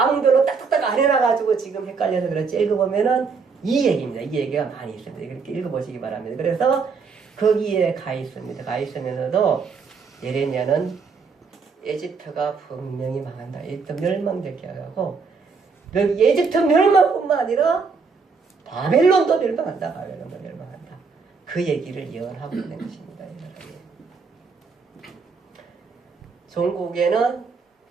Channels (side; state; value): left; quieter; 5.0 dB